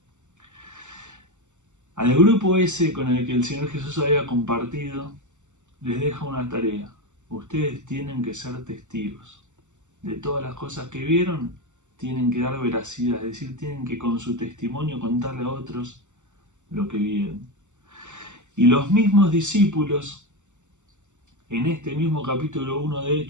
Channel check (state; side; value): late; left; 0.84 ms